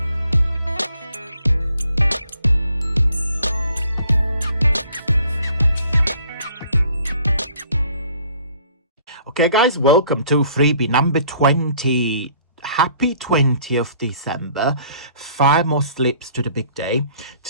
Okay guys, welcome to freebie number 20. Happy 20th December. 5 more slips to the big day.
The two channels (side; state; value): both; inverted; correlation -0.58